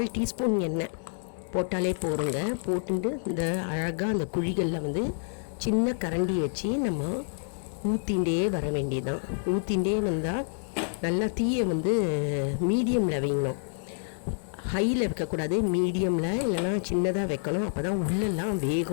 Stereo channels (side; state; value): right; silent; 59 dB below the other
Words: டீஸ்பூன் எண்ணெய் போட்டாலே போகிறோங்க. போட்டுட்டு இந்த அழகாக அந்த குழிகளில் வந்து சின்ன கரண்டி வச்சு நம்ம ஊற்றிண்டே வர வேண்டியதுதான். ஊற்றிண்டே வந்தால் நல்லா தீயை வந்து மீடியமில் வைக்கணும், ஹையில் வைக்கக்கூடாது. மீடியமில் இல்லைனா சின்னதாக வைக்கணும். அப்போ தான் உள்ளெல்லாம்